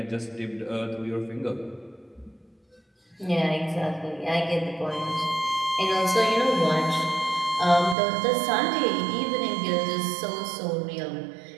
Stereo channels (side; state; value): left; drops out; at 8.0 s